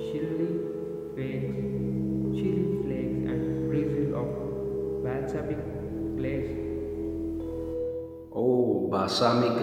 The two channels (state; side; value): identical; both; correlation 1.00